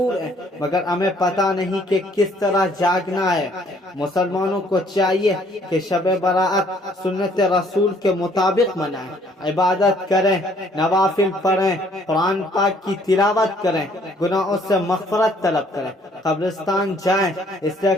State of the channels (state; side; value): normal; both; correlation 0.62